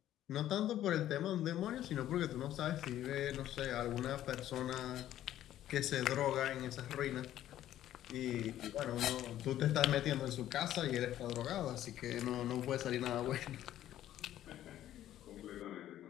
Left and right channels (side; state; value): right; quieter; 12.5 dB